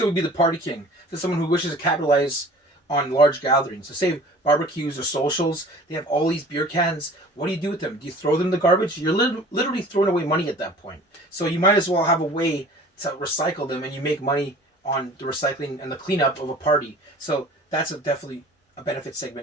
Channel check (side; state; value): both; normal; correlation 0.46